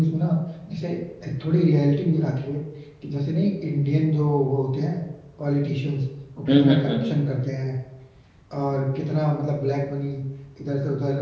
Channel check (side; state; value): both; identical; correlation 1.00